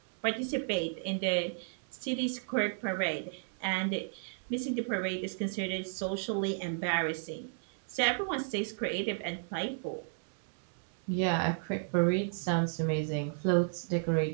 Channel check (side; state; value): left; silent; digital silence